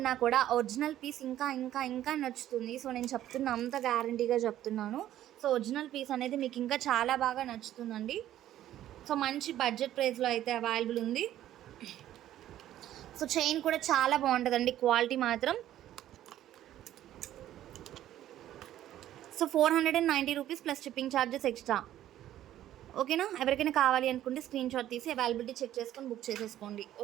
కూడా ఒరిజినల్ పీస్ ఇంకా ఇంకా ఇంకా నచ్చుతుంది. సో నేను చెప్తున్నా, అంత గ్యారంటీగా చెప్తున్నాను. సో ఒరిజినల్ పీస్ అనేది మీకు ఇంకా చాలా బాగా నచ్చుతుందండి. సో మంచి బడ్జెట్ ప్రైస్లో అయితే అవైలబుల్ ఉంది. సో చైన్ కూడా చాలా బాగుంటుందండి, క్వాలిటీ మాత్రం. So 490 rupees plus shipping charges extra. ఓకేనా. ఎవరికైనా కావాలి అనుకుంటే స్క్రీన్ షాట్ తీసి అవైలబిలిటీ చెక్ చేసుకొని బుక్ చేసేసుకోండి.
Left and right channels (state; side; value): quieter; left; 12.6 dB